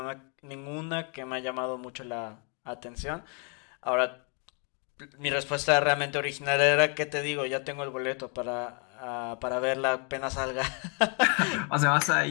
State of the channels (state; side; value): quieter; right; 37.0 dB